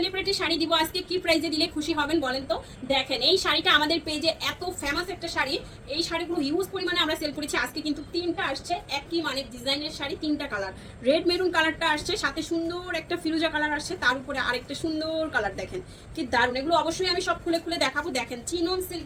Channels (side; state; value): both; identical; correlation 1.00